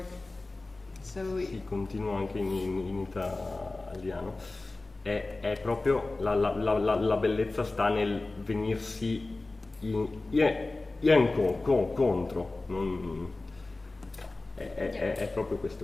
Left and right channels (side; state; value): right; quieter; 3.2 dB